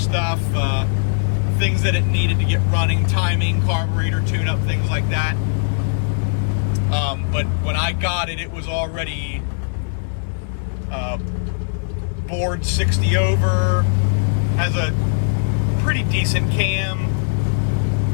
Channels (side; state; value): right; silent; digital silence